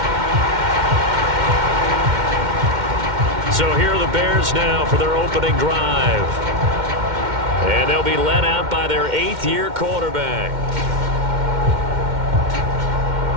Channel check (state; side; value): late; left; 2.1 ms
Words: So here are the Bears now for their opening drive. And they'll be led out by their 8th-year quarterback.